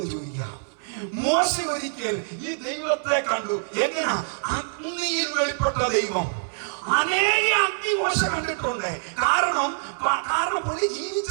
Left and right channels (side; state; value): left; silent; 62 dB below the other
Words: ചോദിക്കാം. മോശ ഒരിക്കൽ ഈ ദൈവത്തെ കണ്ടു. എങ്ങനെയാ? അഗ്നിയിൽ വെളിപ്പെട്ട ദൈവം. അനേക അഗ്നി മോശ കണ്ടിട്ടുണ്ട്. കാരണം പുള്ളി